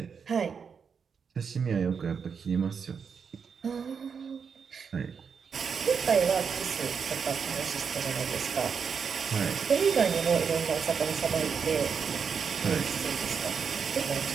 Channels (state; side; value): quieter; left; 6.3 dB